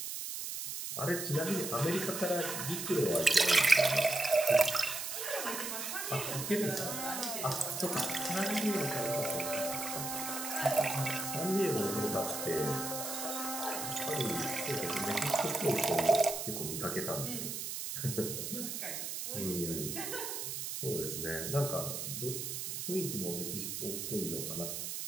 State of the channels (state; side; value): noise; right; hiss, 4 dB below the sound